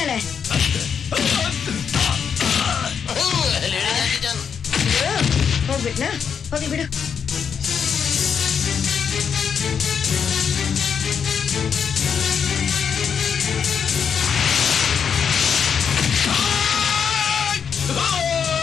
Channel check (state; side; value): quieter; right; 7.1 dB